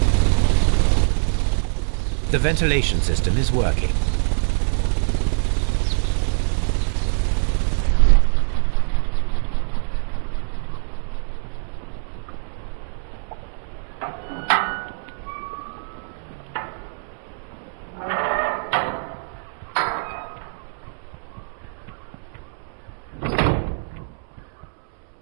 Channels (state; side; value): silent; left; 63 dB below the other